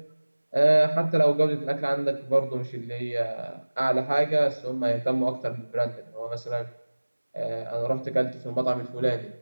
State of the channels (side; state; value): both; inverted; correlation -1.00